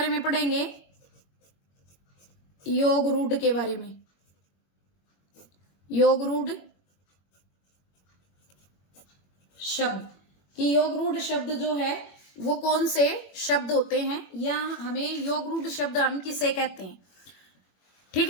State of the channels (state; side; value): late; right; 21 ms